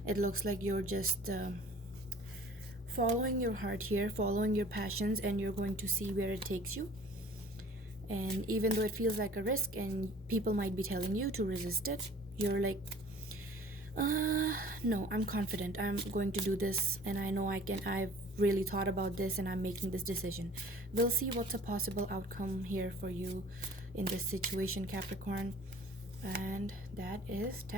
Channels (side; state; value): both; normal; correlation 0.48